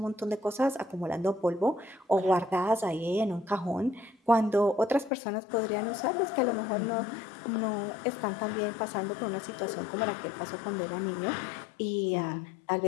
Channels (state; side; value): drops out; right; at 5.1 s